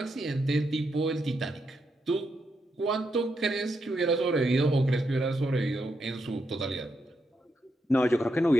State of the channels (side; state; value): both; normal; correlation 0.82